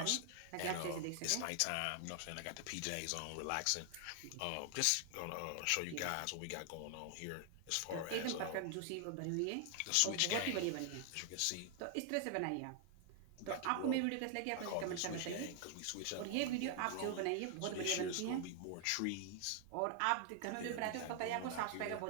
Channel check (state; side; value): different; both; correlation 0.00